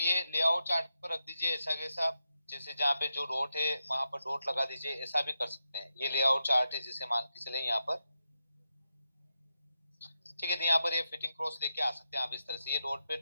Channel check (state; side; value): inverted; both; correlation -0.87